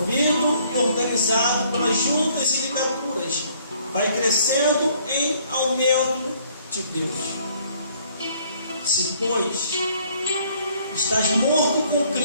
e organizado pelas juntas e ligaduras, vai crescendo em aumento de Deus. Se, pois, estás morto com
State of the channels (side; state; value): both; inverted; correlation -0.62